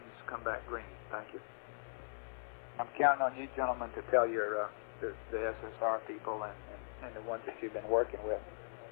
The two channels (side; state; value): right; silent; 51 dB below the other